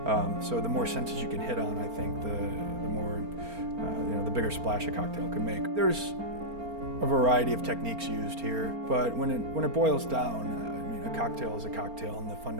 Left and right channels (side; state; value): left; late; 4.4 ms